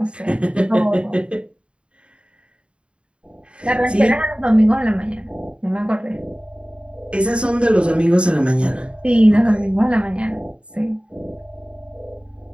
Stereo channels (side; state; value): left; late; 0.057 ms